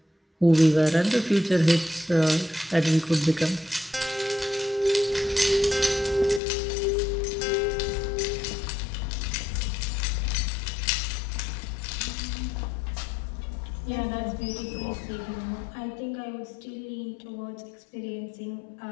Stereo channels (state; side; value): drops out; right; at 6.4 s